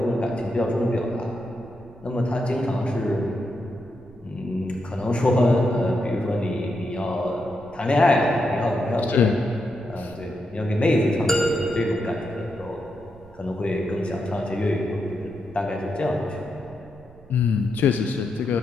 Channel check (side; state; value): right; noise; rumble, 23 dB below the sound